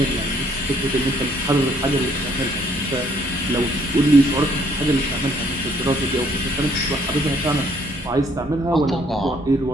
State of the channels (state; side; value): normal; both; correlation 0.65